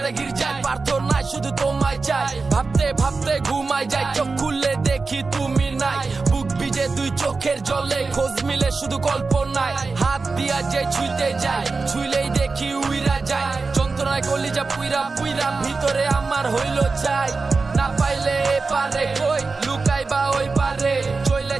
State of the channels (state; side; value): quieter; left; 4.1 dB